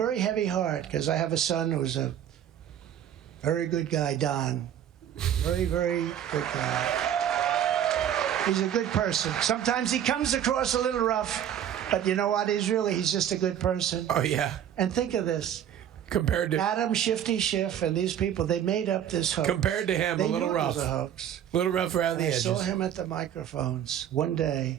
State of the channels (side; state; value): left; quieter; 10.1 dB